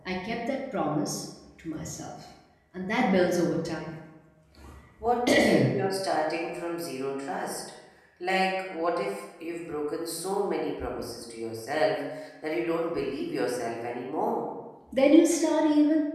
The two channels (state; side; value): identical; both; correlation 1.00